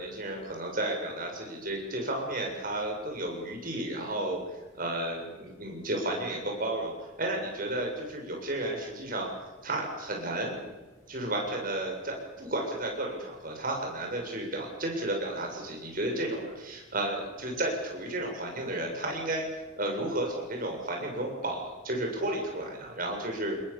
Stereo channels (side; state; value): both; normal; correlation 0.02